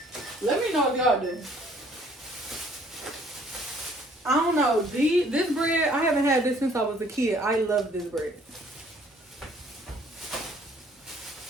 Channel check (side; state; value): both; normal; correlation 0.60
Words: Let me know if y'all do. I don't know. This bread, I haven't had this since I was a kid. I love this bread.